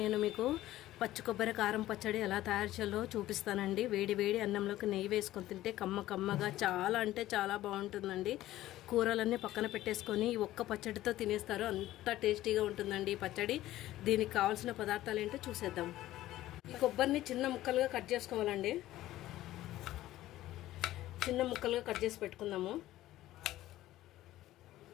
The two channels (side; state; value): right; quieter; 15.0 dB